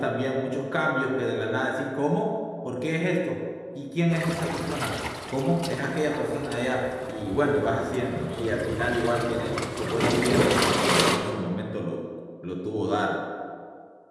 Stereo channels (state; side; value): identical; both; correlation 1.00